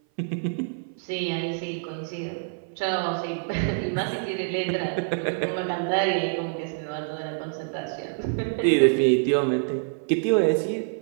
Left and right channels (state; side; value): silent; left; 57 dB below the other